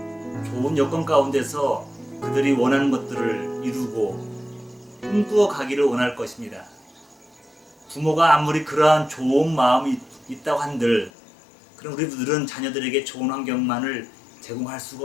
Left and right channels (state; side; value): drops out; right; at 11.1 s